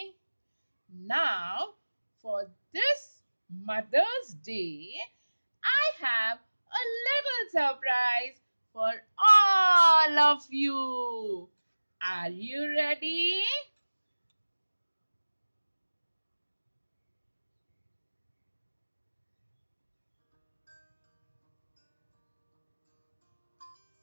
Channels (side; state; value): both; inverted; correlation -1.00